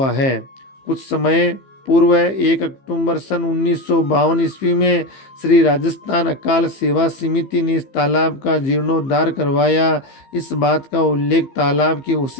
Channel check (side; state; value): right; late; 15 ms